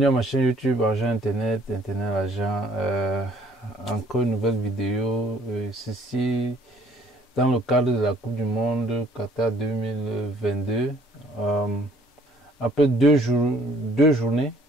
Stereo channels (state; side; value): normal; both; correlation 0.59